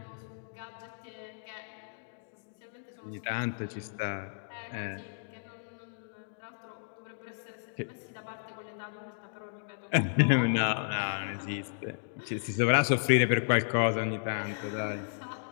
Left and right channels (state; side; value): silent; right; digital silence